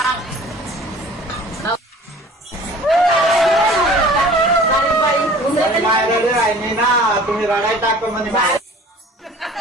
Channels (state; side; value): normal; both; correlation 0.46